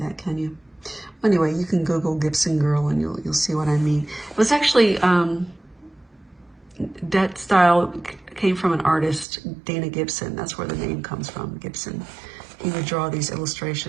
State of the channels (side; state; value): left; drops out; at 9.2 s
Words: can you? Anyway, you can Google Gibson girl and you'll see what I mean. It was actually that style came from an artist, Dana Gibson. That's where the name comes from, Gibson. He would draw these